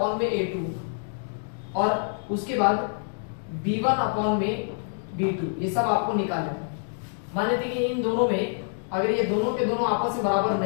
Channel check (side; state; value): right; silent; digital silence